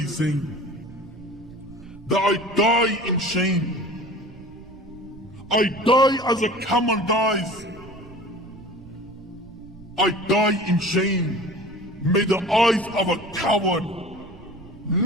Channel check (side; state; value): right; noise; rumble, 21 dB below the sound